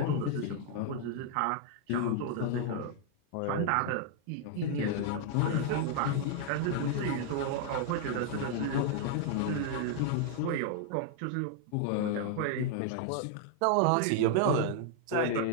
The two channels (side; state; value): both; different; correlation 0.00